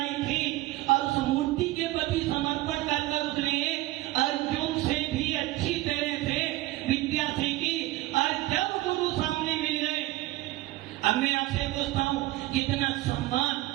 थी और उस मूर्ति के प्रति समर्पण कर उसने अर्जुन से भी अच्छी तरह से विद्या सीखी। और जब गुरु सामने मिल गए, अब मैं आपसे पूछता हूँ, कितना सम्मान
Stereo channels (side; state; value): left; quieter; 17.6 dB